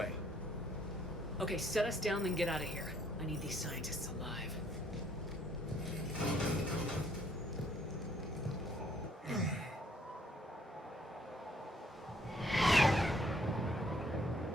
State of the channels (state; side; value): normal; both; correlation 0.65